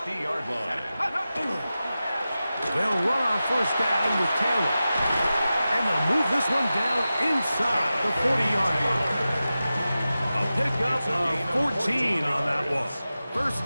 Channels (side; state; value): both; inverted; correlation -0.94